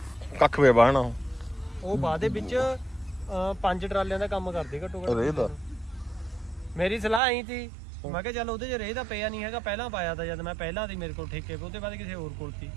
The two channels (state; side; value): drops out; left; at 7.2 s